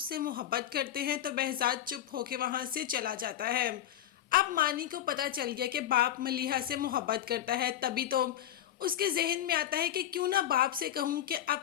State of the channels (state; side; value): quieter; right; 11.8 dB